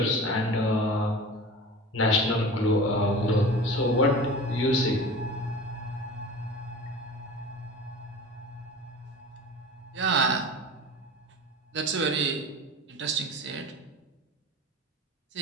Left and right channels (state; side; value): normal; both; correlation 0.36